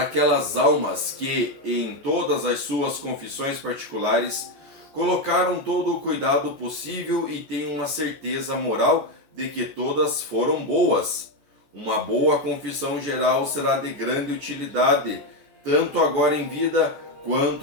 almas que, em todas as suas confissões particulares, colocaram todo o cuidado possível e têm uma certeza moral de que todas foram boas. Uma boa confissão geral será de grande utilidade, tanto agora em vida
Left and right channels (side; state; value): left; late; 14 ms